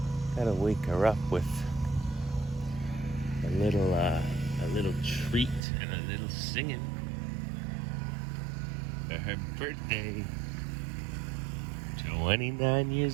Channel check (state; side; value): drops out; left; at 5.6 s